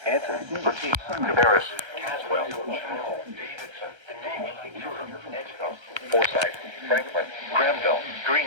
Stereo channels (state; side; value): late; left; 1.3 ms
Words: Anson, Bertie, Cabarrus, Caswell, Davidson, Edgeville, Forsyth, Franklin, Granville,